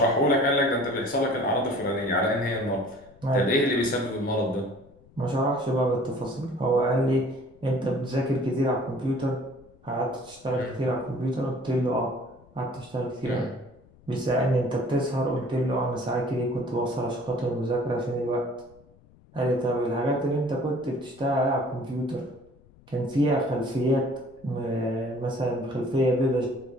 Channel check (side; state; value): left; noise; rumble, 27 dB below the sound